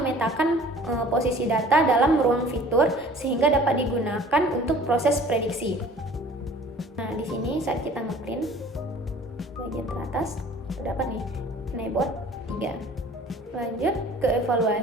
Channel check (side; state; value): both; normal; correlation 0.48